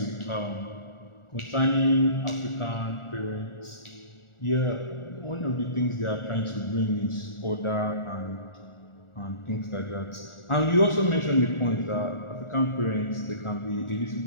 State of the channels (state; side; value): late; right; 1.4 ms